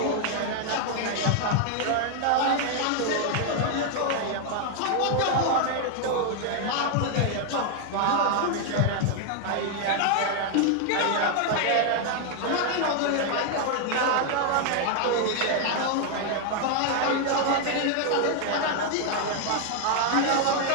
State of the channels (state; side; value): different; both; correlation 0.00